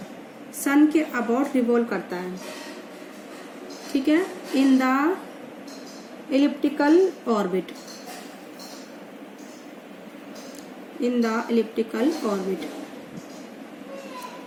सन के अबाउट रिवॉल्व करता है। ठीक है, in the elliptical orbit, in the elliptical orbit।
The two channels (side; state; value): both; identical; correlation 1.00